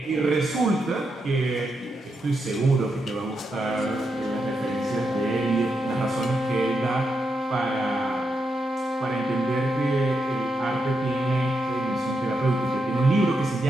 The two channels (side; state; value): both; normal; correlation 0.84